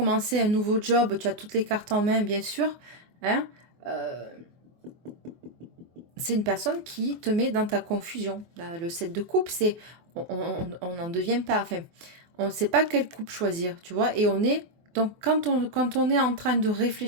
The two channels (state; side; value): late; left; 24 ms